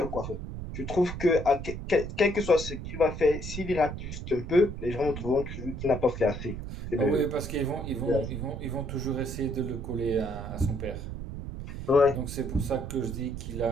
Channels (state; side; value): noise; right; rumble, 7 dB below the sound